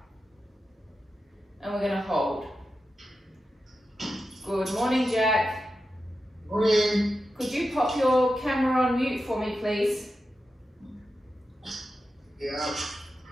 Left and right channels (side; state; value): both; normal; correlation 0.90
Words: And we're going to hold. Good morning, Jack. Morning. Could you pop your camera on mute for me, please? Yeah.